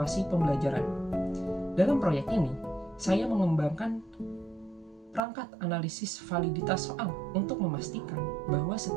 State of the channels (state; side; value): drops out; left; at 5.2 s